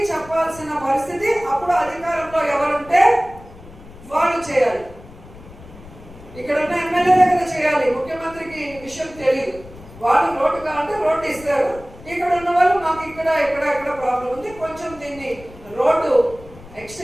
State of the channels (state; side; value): noise; left; rumble, 19 dB below the sound